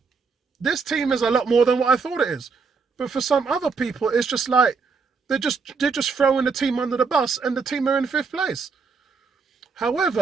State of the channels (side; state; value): left; quieter; 5.0 dB